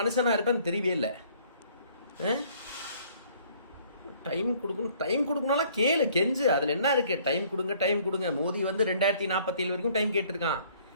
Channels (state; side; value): inverted; both; correlation -0.59